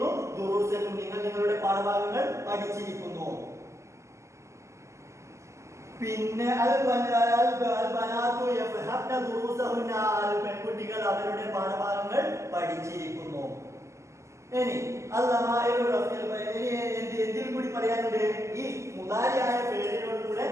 ദുറൂസക്കും, നിങ്ങൾ നിങ്ങളുടെ പാഠഭാഗങ്ങൾ പഠിച്ചിരിക്കുന്നു. പിന്നെ പെൺകുട്ടികൾ അവരുടെ പാഠഭാഗങ്ങൾ പഠിച്ചിരിക്കുന്നു. ഇനി എന്തിൽ കൂടി പറയാനുണ്ട്? ഈ മുളാരിയായ ഫേലിനോട് കൂടെ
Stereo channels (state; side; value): late; left; 0.14 ms